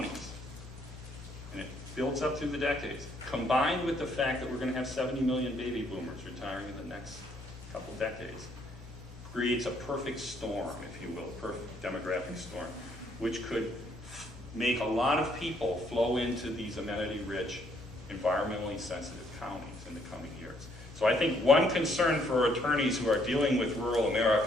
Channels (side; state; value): both; normal; correlation 0.68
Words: and it builds up through the decades, combined with the fact that we're going to have 70 million baby boomers retiring in the next couple decades, creates a perfect storm, if you will, a perfect demographic storm, which could make a lot of people flow into these amenity-rich, environmentally sensitive counties in the coming years. So I think one concern for attorneys who are dealing with rural